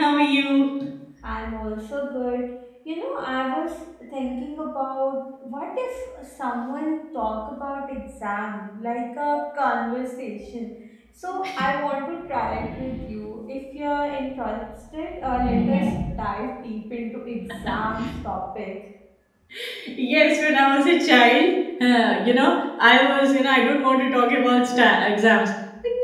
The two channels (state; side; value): identical; both; correlation 1.00